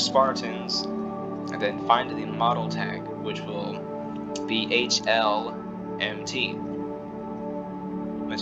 and then find the model tag, which will be HLMT. Once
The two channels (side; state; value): both; identical; correlation 1.00